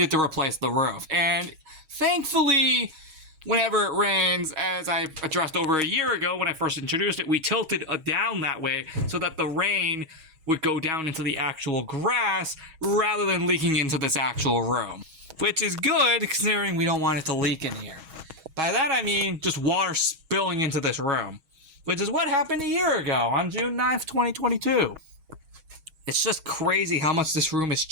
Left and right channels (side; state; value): left; late; 6.3 ms